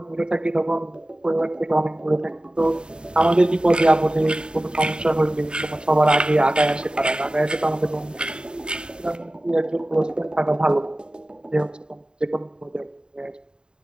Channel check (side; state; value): left; late; 0.049 ms